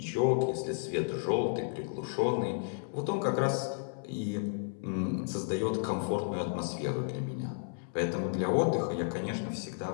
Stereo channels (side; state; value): right; silent; 56 dB below the other